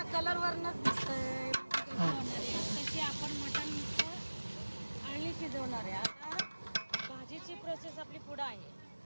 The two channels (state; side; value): inverted; both; correlation -1.00